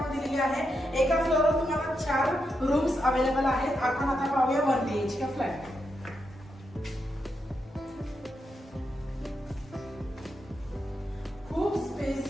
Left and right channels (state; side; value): normal; both; correlation 0.84